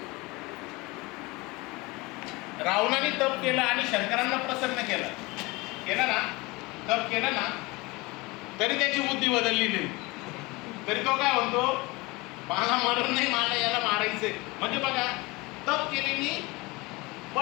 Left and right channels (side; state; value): right; quieter; 23.8 dB